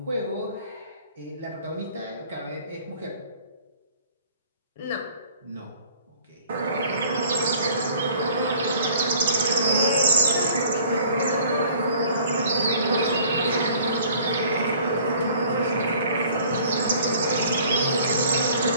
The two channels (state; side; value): inverted; both; correlation -0.53